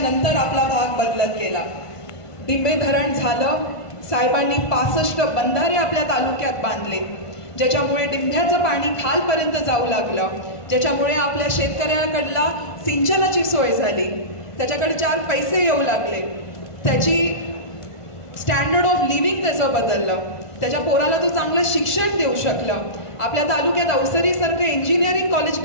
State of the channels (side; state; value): right; late; 1.5 ms